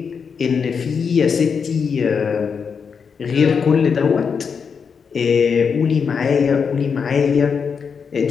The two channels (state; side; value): quieter; right; 6.1 dB